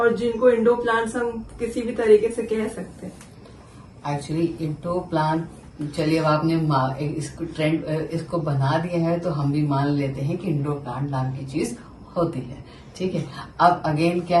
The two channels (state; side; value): identical; both; correlation 1.00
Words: जिनको इंडोर प्लांट्स हम किसी भी तरीके से कह सकते हैं। एक्चुअली इंडोर प्लांट, चलिए अब आपने इसको ट्रेंड इसको बना दिया है तो हम भी मान लेते हैं कि इंडोर प्लांट नाम की चीज होती है, ठीक है। अब अगेन